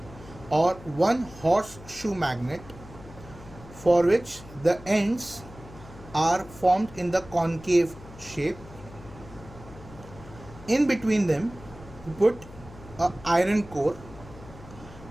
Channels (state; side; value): noise; left; hum, 18 dB below the sound